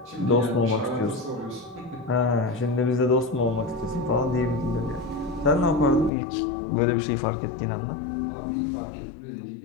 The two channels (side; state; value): right; drops out; at 6.1 s